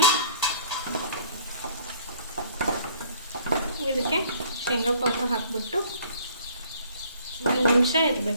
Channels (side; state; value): both; inverted; correlation -0.56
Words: ಇದಕ್ಕೆ ಶೇಂಗಾ ಪೌಡ್ರ್ ಹಾಕಿಬಿಟ್ಟು 1 ನಿಮಿಷ